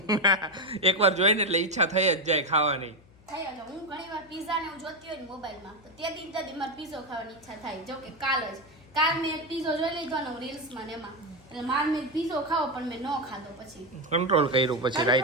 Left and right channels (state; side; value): noise; left; hum, 26 dB below the sound